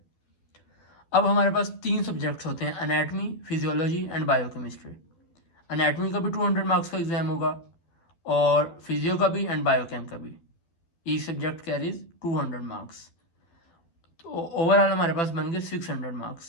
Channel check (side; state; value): right; late; 12 ms